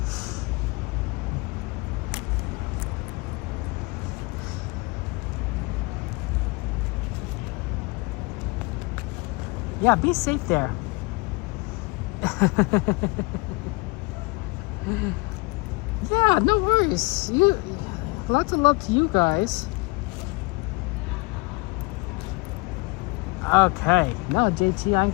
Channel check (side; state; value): right; quieter; 27.0 dB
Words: Yeah, be safe there. Yeah, no worries. Lots of love to you guys. Okay, no, JT, I'm